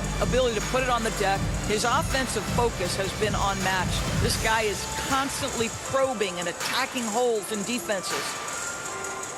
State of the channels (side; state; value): both; identical; correlation 1.00